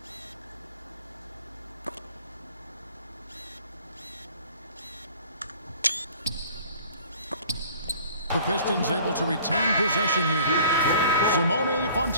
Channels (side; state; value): both; inverted; correlation -0.51